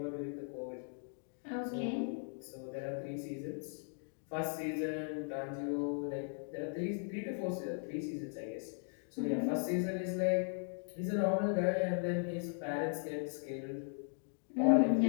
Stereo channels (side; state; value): right; silent; 52 dB below the other